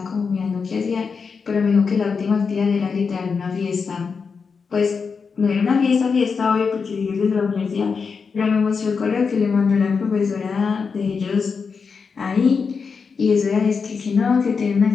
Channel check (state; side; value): quieter; right; 5.4 dB